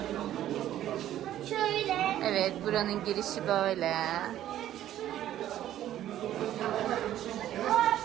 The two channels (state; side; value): quieter; left; 12.4 dB